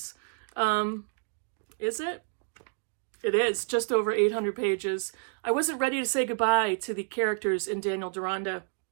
Is it? It is, just over 800 pages. I wasn't ready to say goodbye to the characters in Daniel Deronda.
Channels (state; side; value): silent; left; digital silence